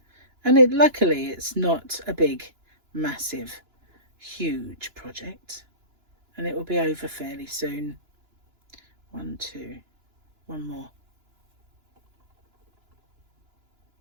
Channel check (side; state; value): left; late; 2.9 ms